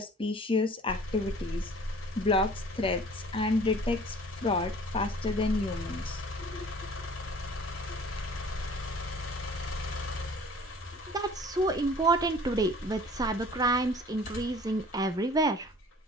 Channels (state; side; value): normal; both; correlation 0.49